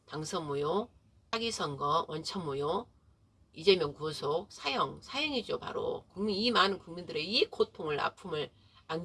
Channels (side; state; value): both; identical; correlation 1.00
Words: 당선무효, 사기선거, 원천무효, 이재명 구속, 사형이죠. 바로 국민 이 많은 국민들의 이 고통을 아픔을